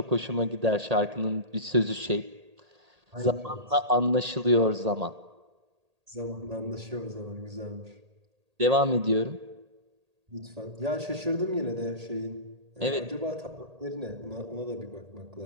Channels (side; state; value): left; late; 1.8 ms